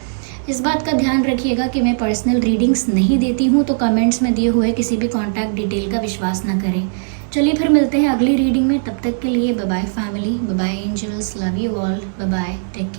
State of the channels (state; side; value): silent; left; 67 dB below the other